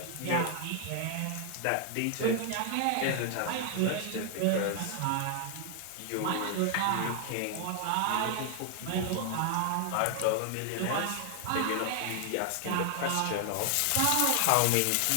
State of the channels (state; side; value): different; both; correlation 0.00